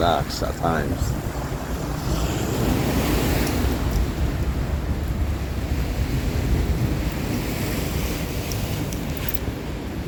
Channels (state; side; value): identical; both; correlation 1.00